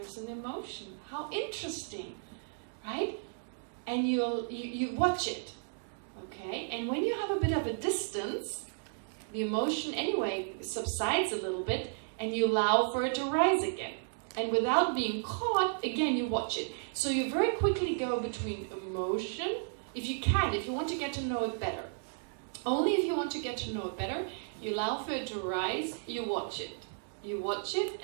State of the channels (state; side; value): silent; left; digital silence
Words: an emotion. How interesting, right? And you watch it, okay? And when you have a bit of a distance, the emotion anyway subsides a little bit, and you allow for it to rise again. And without being caught, again, you watch it. So you very quickly go between emotion, if you can, if you want to get to know it better. Only if you want to get to know it better, you allow for it to rise, you watch it. You watch it,